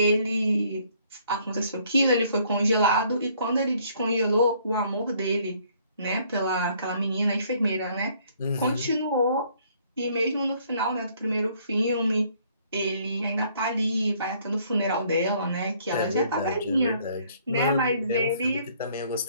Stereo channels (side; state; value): both; inverted; correlation -0.63